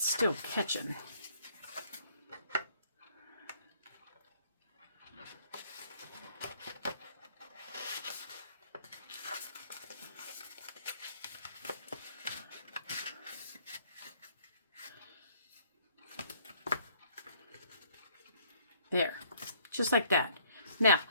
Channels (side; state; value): both; inverted; correlation -0.63